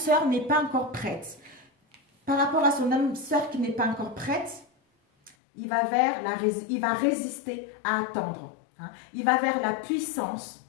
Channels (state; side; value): drops out; right; at 5.4 s